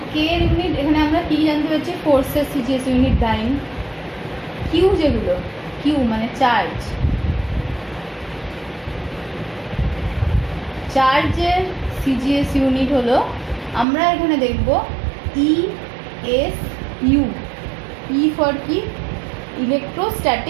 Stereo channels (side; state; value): left; drops out; at 13.9 s